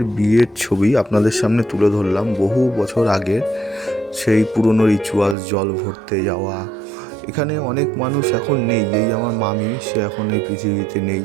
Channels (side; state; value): left; drops out; at 5.4 s